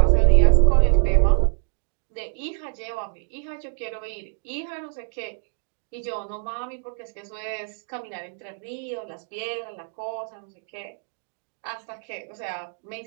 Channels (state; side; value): silent; left; digital silence